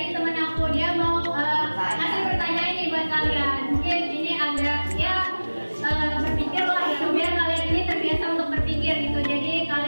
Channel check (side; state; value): both; inverted; correlation -1.00